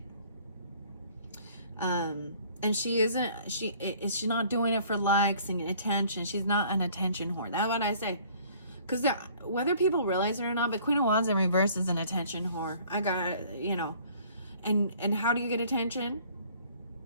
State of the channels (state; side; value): inverted; both; correlation -0.55